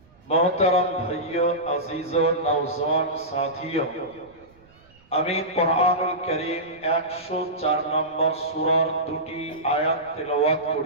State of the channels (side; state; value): right; noise; rumble, 29 dB below the sound